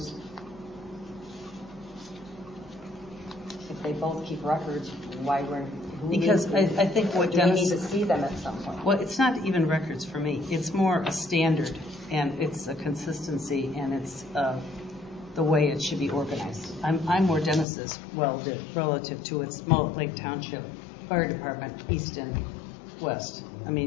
If they both keep records, who Because needs to- I think what do we need Dennis, to see them at some point? well, it's not even records for me. It's more a standard, and it's a consistency, and it's the way it should be organized. I'm more Dennis's, relative to its Mullett Lake Township Fire Department, east and west. I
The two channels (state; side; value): drops out; right; at 17.7 s